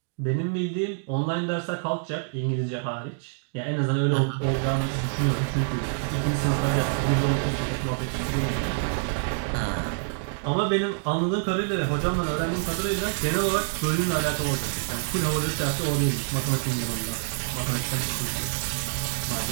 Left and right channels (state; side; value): silent; left; digital silence